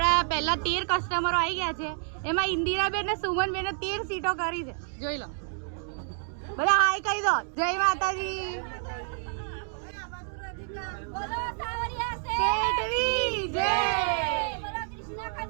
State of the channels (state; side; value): silent; left; 59 dB below the other